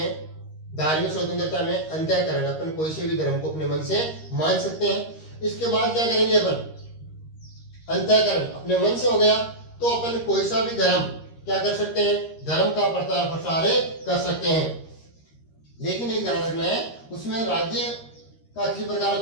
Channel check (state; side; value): late; right; 13 ms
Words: धार्मिक स्वतंत्रता में अंतःकरण, अपन कोई से भी धर्म को अपने मन से मान सकते हैं। इसके बाद क्या करेंगे अपन, अंतःकरण अपने मन से हो गया तो अपन कोई सा भी धर्म क्या कर सकते हैं, धर्म का प्रचार प्रसार कर सकते हैं। लेकिन एक ध्यान रखना है, उसमें राज्य का किसी प्रकार का